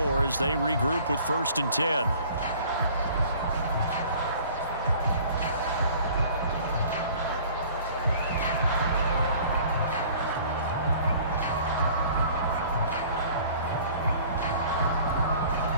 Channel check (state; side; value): inverted; both; correlation -0.50